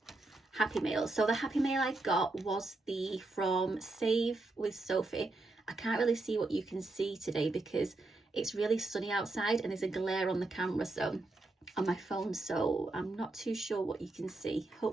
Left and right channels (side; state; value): left; quieter; 3.1 dB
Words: Happy Mail. So the Happy Mail I got was from Save with Sophie. I can't really see what you can see today because it's really sunny outside and there's a glare on the camera, so on my phone, so I'm not too sure what you can see.